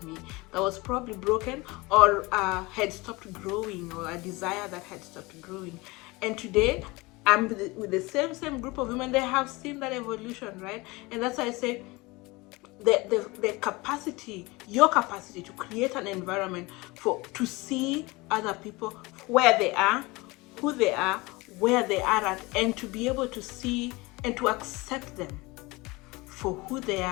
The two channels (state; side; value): quieter; right; 23.4 dB